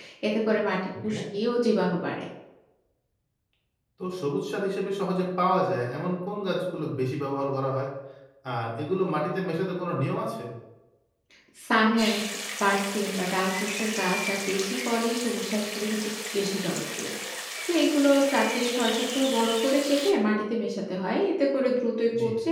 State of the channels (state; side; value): identical; both; correlation 1.00